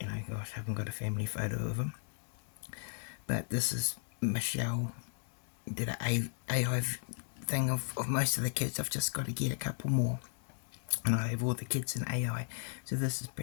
gosh, I haven't got a family photo of him. But this is Michelle did an AI thing of most of the kids. I've just got to get a couple more, and I have all the kids in AI. So this is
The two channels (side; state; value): right; silent; digital silence